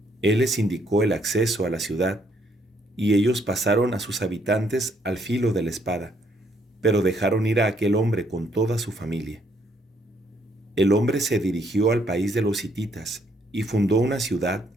Él les indicó el acceso a la ciudad, y ellos pasaron a sus habitantes al filo de la espada, pero dejaron ir a aquel hombre con toda su familia. El hombre se dirigió al país de los hititas y fundó una ciudad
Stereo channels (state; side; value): normal; both; correlation 0.70